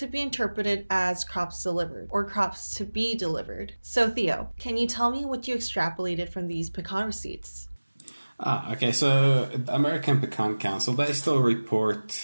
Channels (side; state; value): both; inverted; correlation -1.00